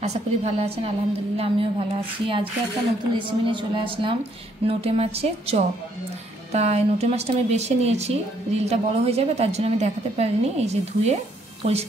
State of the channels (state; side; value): normal; both; correlation 0.69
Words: আশা করি ভালো আছেন। আলহামদুলিল্লাহ আমিও ভালো আছি। আজকে একটা নতুন রেসিপি নিয়ে চলে আসলাম, নোটে মাছের চপ। তাই নোটে মাছটা আমি বেছে নিয়েছি, রিলটা বড় হয়ে যাবে তার জন্য আমি দেখাতে পারিনি। এই যে ধুয়ে